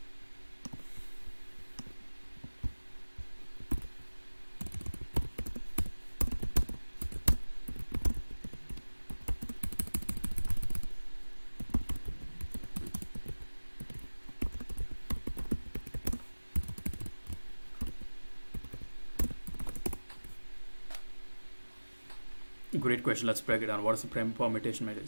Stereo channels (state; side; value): inverted; both; correlation -1.00